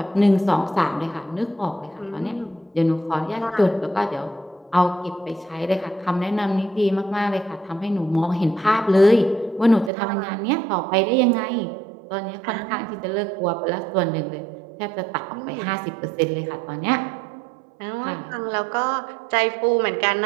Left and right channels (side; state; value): left; drops out; at 9.9 s